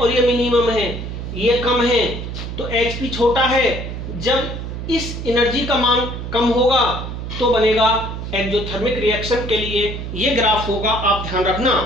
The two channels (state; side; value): noise; right; hum, 7 dB below the sound